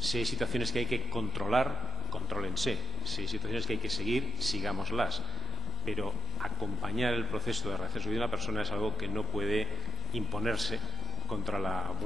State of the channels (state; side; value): normal; both; correlation 0.87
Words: hay situaciones que hay que controlar, contrólense. Si hay situaciones que hay que seguir, sigámoslas. Pero acompañar el proceso de rehacer su vida de la persona es algo que no puede imponerse contra la